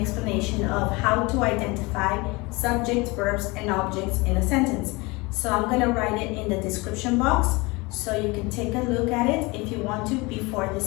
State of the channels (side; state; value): right; quieter; 24.9 dB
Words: of how to identify subjects, verbs, and objects in a sentence. So I'm going to write it in the description box so you can take a look at it if you want to before